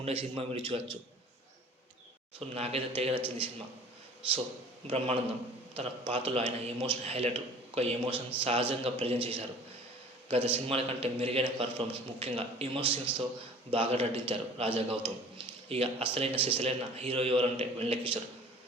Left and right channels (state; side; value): normal; both; correlation 0.47